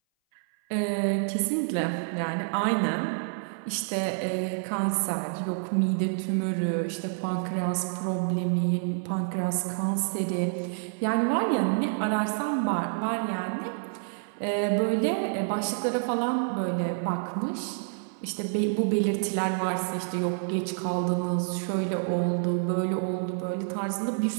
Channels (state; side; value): silent; left; 58 dB below the other